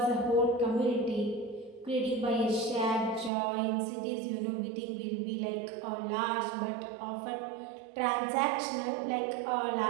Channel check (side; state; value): left; drops out; at 3.3 s